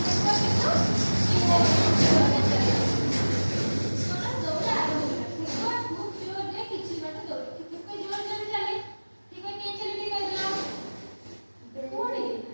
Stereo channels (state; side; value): inverted; both; correlation -1.00